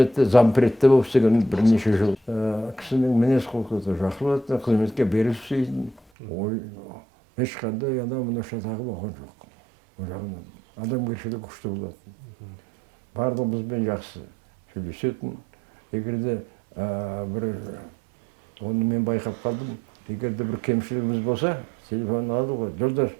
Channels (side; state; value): left; drops out; at 6.0 s